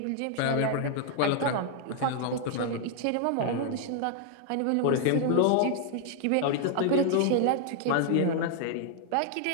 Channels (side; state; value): both; different; correlation 0.00